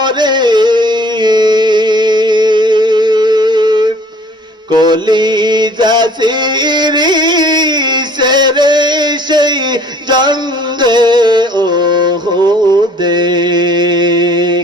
কলিজা সিরি সেরে সেই জঙ্গে ওহুদে।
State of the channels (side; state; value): both; normal; correlation 0.53